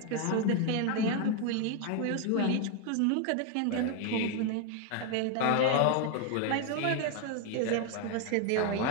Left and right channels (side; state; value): both; different; correlation 0.01